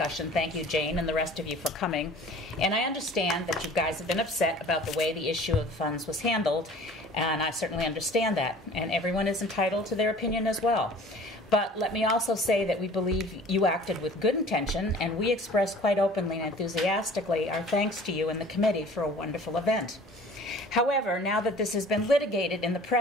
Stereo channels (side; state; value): both; normal; correlation 0.47